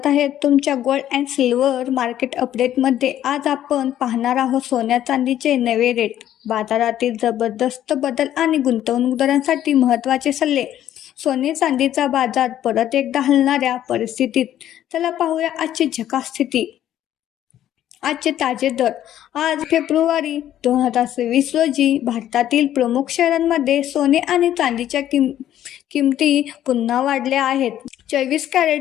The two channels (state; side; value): quieter; right; 11.7 dB